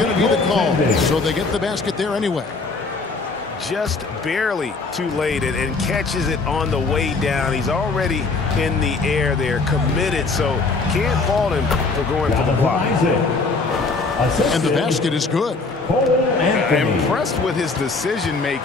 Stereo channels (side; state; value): right; quieter; 3.9 dB